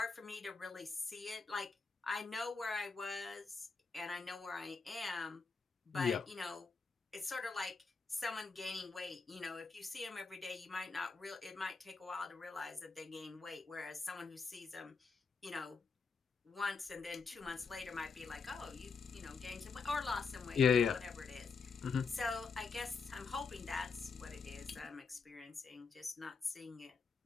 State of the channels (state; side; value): quieter; right; 4.8 dB